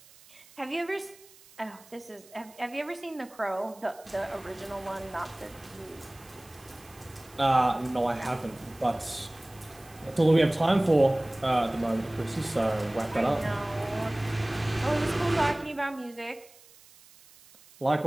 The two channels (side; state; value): right; noise; hiss, 25 dB below the sound